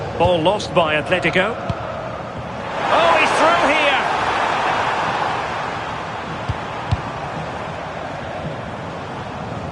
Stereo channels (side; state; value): both; identical; correlation 1.00